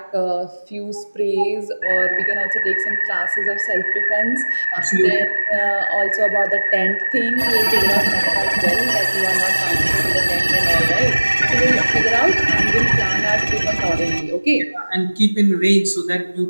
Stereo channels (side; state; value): both; inverted; correlation -1.00